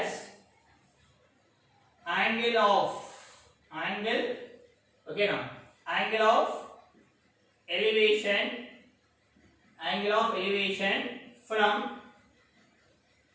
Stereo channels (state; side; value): identical; both; correlation 1.00